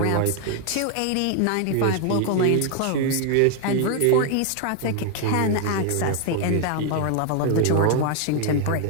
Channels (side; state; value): both; different; correlation 0.00